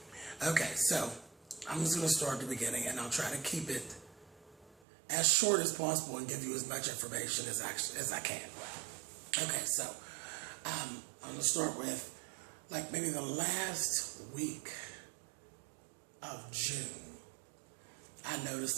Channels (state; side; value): drops out; left; at 4.8 s